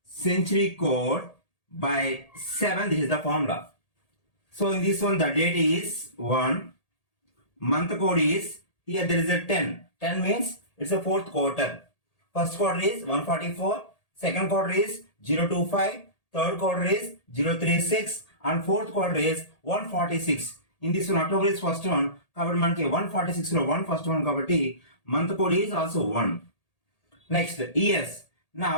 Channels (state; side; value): late; right; 1.8 ms